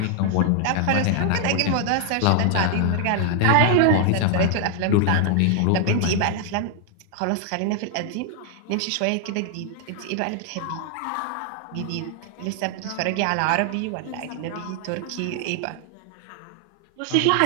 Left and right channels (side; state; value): both; different; correlation 0.00